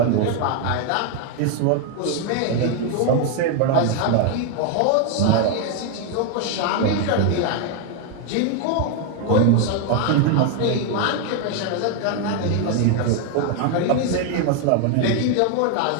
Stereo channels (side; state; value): both; different; correlation 0.01